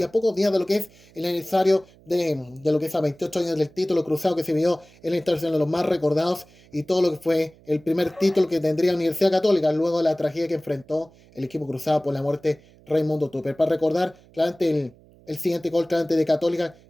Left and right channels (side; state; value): right; noise; hum, 27 dB below the sound